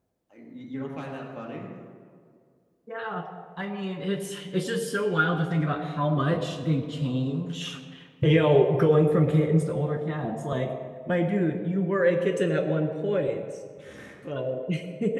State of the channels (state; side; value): identical; both; correlation 1.00